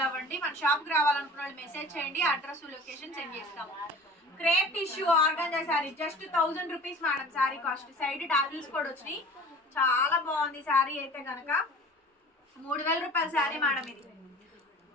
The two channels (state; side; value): normal; both; correlation 0.42